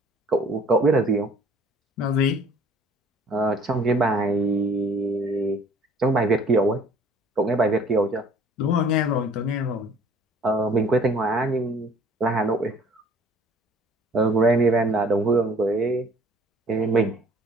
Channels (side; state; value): both; normal; correlation 0.53